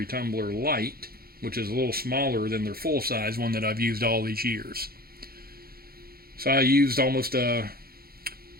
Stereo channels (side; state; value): left; late; 0.44 ms